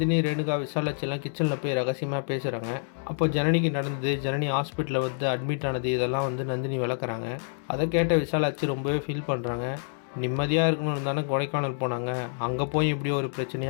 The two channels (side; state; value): right; silent; digital silence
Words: ரேணுகா, விசாலாட்சியெல்லாம் கிச்சனில் போய் ரகசியமாக பேசுகிறாங்க. அப்போ ஜனனிக்கு நடந்தது, ஜனனி ஹாஸ்பிட்டலில் வந்து அட்மிட் ஆனது, இதெல்லாம் வந்து நந்தினி விளக்குறாங்க. அதை கேட்ட விசாலாட்சி ரொம்பவே ஃபீல் பண்ணுறாங்க. நிம்மதியாக இருக்கணும்னு தானே கொடைக்கானல் போனாங்க, அங்கே போய் இப்படி ஒரு